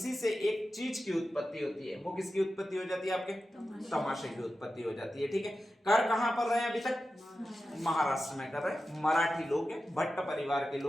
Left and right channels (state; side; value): normal; both; correlation 0.92